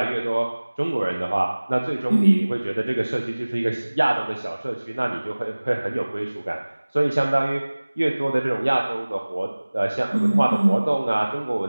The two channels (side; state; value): both; inverted; correlation -1.00